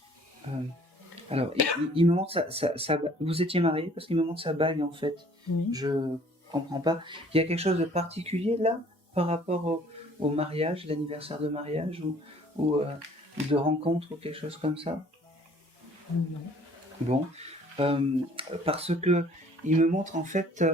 alors, il me montre vous étiez mariés parce qu'il me montre sa bague, en fait. Oui. Je comprends pas. Il y a quelque chose de particulier, là, par rapport au mariage, l'anniversaire de mariage, ou de rencontre, ou quelque chose comme ça? Non. Bon, parce que il me montre en fait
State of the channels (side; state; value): both; normal; correlation 0.55